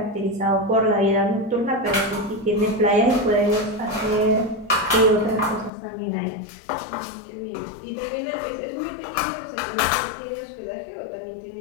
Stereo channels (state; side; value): drops out; right; at 5.7 s